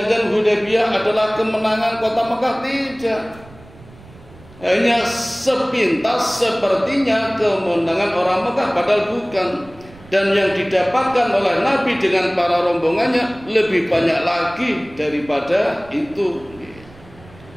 Hudaybiyah adalah kemenangan kota Mekah. Tidak. Hanya sepintas sepertinya kemenangan orang Mekah, padahal bukan. Dan yang didapatkan oleh Nabi dengan para rombongannya lebih banyak lagi daripada itu.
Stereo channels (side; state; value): right; noise; rumble, 22 dB below the sound